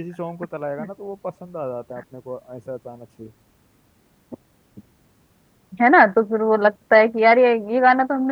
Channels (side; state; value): both; identical; correlation 1.00